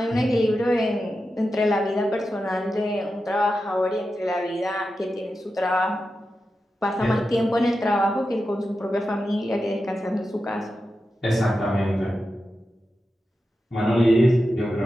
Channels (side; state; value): both; normal; correlation 0.90